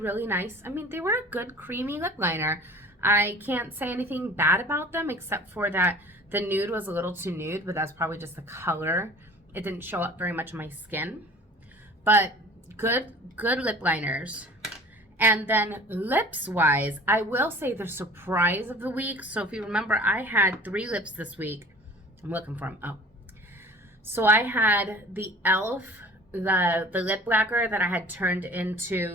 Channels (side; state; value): both; normal; correlation 0.45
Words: nice. I mean, they were a good creamy lip liner. I can't say anything bad about them except for that the nude was a little too nude, but that's probably just the color. It didn't show up very much on my skin. But good lip liners. And then lips wise, I will say the surprise of the week. So if you remember, I had 3 lips this week. I'm looking for them. Oh. So I had the e.l.f. the lip lacquer that I had turned